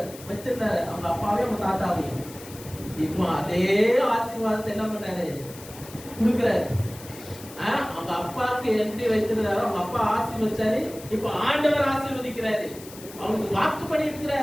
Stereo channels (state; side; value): noise; left; hiss, 17 dB below the sound